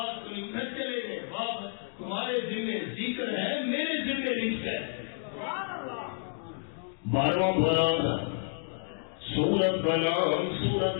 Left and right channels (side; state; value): right; silent; digital silence